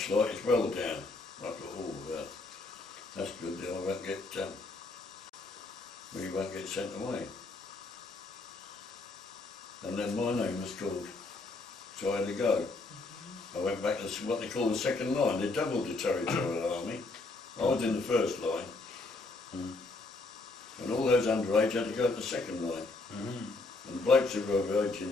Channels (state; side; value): quieter; right; 3.5 dB